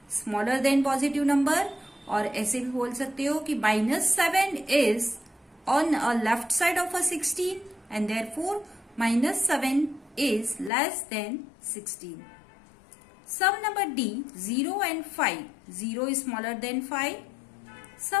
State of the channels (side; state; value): right; drops out; at 10.7 s